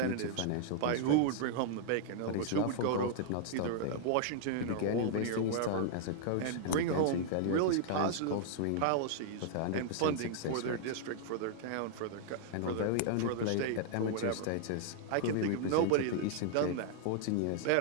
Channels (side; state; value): both; different; correlation -0.01